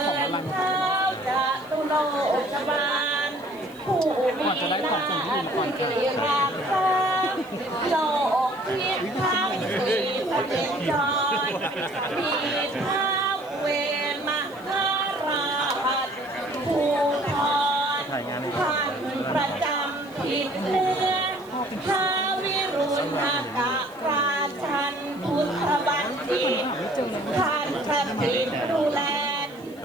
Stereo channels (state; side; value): noise; right; hiss, 27 dB below the sound